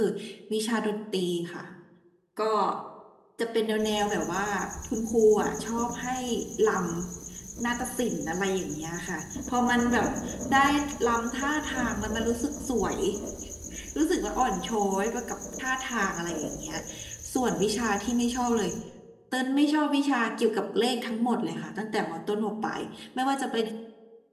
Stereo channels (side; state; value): both; identical; correlation 1.00